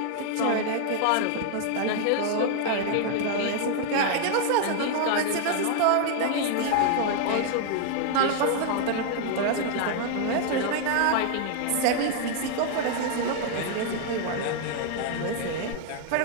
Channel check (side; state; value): both; different; correlation 0.00